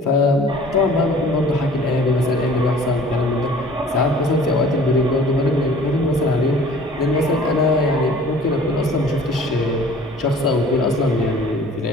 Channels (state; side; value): normal; both; correlation 0.49